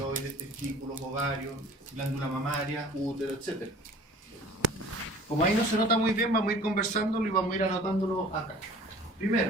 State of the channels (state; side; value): normal; both; correlation 0.47